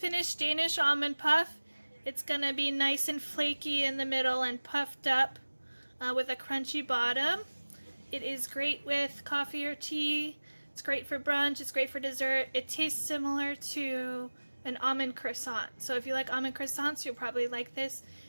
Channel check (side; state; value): both; inverted; correlation -1.00